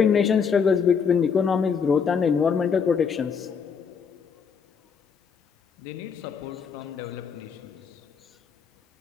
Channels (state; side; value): quieter; right; 6.3 dB